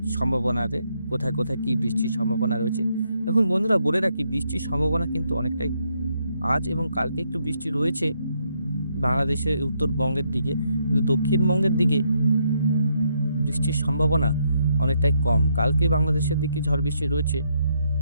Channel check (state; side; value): inverted; both; correlation -0.76